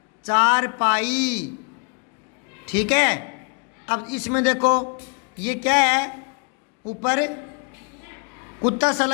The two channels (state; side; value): quieter; right; 39.1 dB